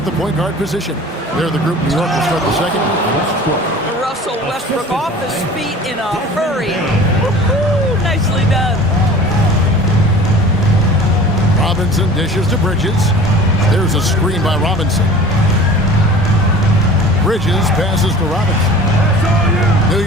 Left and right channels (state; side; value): normal; both; correlation 0.43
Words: the point guard position. They're the group. New York will start the second. Russell Westbrook off his feet in a hurry. Woo-hoo, nicely done. Robinson dishes to Bridges. There's a screen by Robinson. Bridges passes to Robinson. New